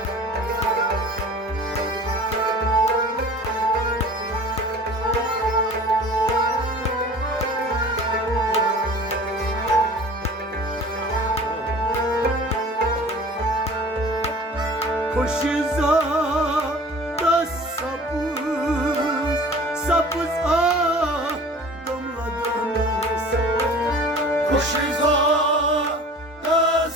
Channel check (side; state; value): both; normal; correlation 0.44